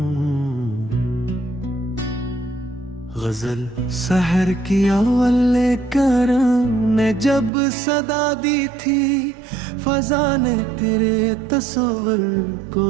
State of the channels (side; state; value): left; drops out; at 7.5 s